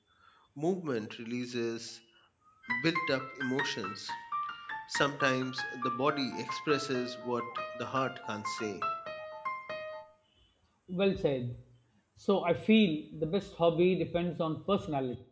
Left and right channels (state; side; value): identical; both; correlation 1.00